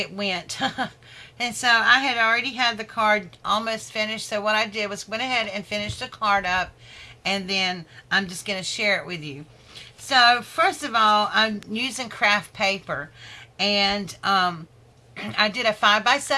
went. And so I had already had the card almost finished, so what I did was went ahead and finished the card up, and then I'm just going to share it with you. So first of all, I'm using craft paper, and I did a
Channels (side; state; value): both; identical; correlation 1.00